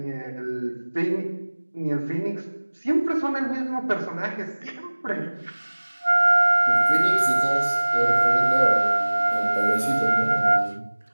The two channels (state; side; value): inverted; both; correlation -1.00